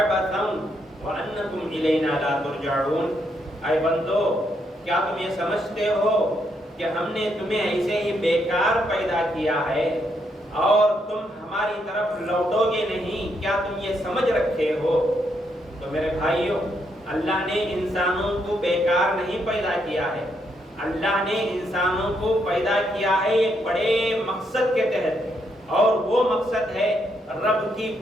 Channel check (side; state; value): both; normal; correlation 0.77